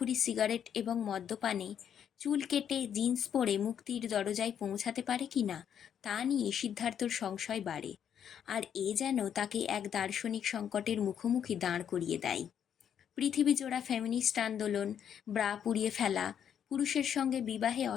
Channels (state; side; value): quieter; right; 8.8 dB